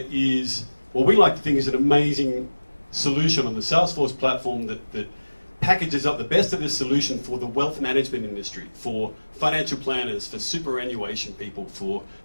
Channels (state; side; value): inverted; both; correlation -1.00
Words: is what we like to think is an amazing solution on the Salesforce platform that packages up the best of this solution for the wealth management industry, for financial planners, for superannuation people, for